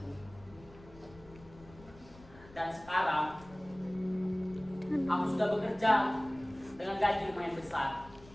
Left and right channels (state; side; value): noise; left; rumble, 21 dB below the sound